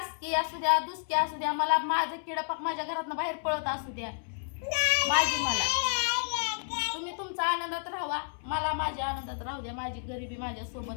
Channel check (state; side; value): silent; right; 57 dB below the other